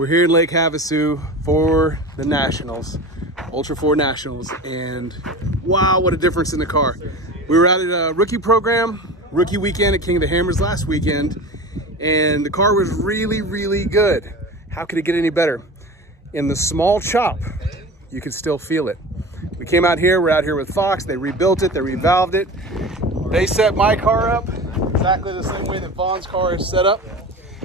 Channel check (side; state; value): both; normal; correlation 0.32